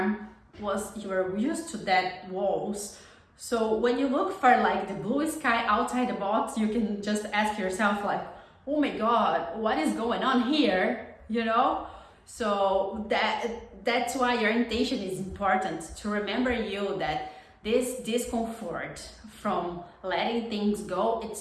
you were used to that walls. So when you look for like the blue sky outside the box, you can just ask yourself like, oh my God, what is going on here? You know? So that's why your intention is important, to remember you that this discomfort from letting things go,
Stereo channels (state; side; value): identical; both; correlation 1.00